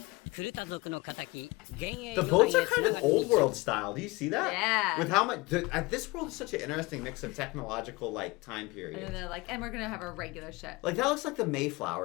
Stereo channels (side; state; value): right; quieter; 23.7 dB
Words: クルタ族の仇幻影 The 鎧 boats へ are kind of 繋がってい old る world style. Do you see that? Yeah. With how much this world is such an interesting mix of technological like time And periods. then they're like, and we're gonna have a regular ship. Like that looks like the